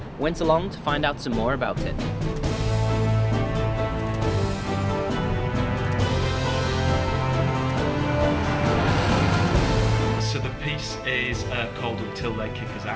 went along to find out some more about it. So the piece is called Until They Kick Us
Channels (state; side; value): identical; both; correlation 1.00